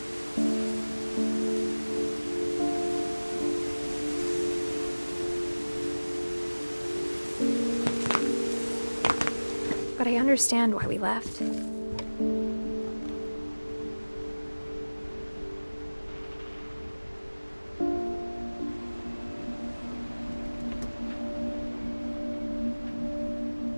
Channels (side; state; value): both; inverted; correlation -1.00